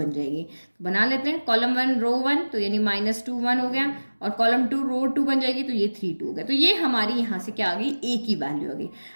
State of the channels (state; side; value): inverted; both; correlation -1.00